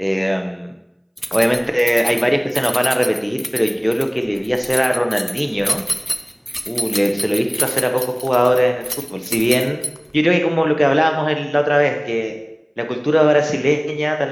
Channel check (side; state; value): both; identical; correlation 1.00